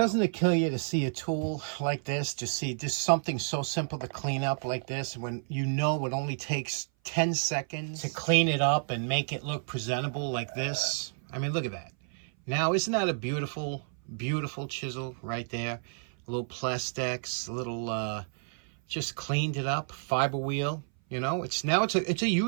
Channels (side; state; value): left; silent; 56 dB below the other